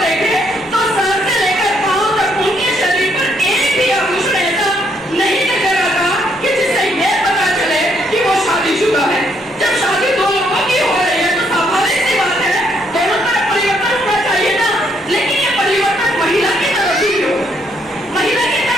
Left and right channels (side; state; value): both; normal; correlation 0.71